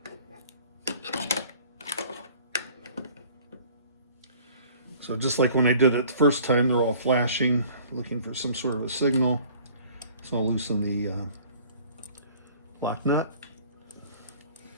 So just like when I did it the first time, they're all flashing, looking for some sort of a signal. So I'll loosen the lock nut,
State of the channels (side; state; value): both; inverted; correlation -0.51